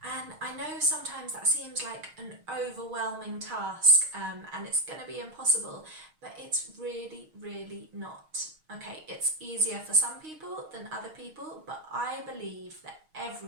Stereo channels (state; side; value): late; left; 6.4 ms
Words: And I know sometimes that seems like an overwhelming task and it's going to be impossible, but it's really not. Okay, it's easier for some people than other people, but I believe that